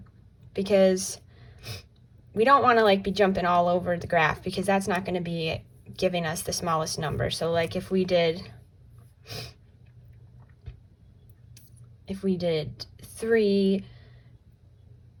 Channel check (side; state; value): both; identical; correlation 1.00